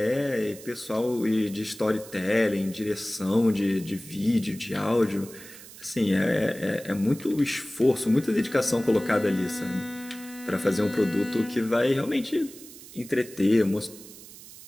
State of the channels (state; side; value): noise; right; hiss, 17 dB below the sound